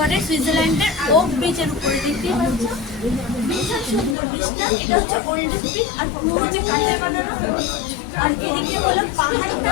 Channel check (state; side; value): drops out; right; at 4.2 s